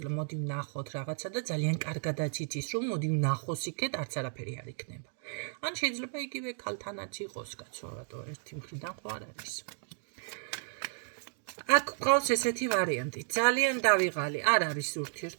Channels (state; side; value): silent; left; 56 dB below the other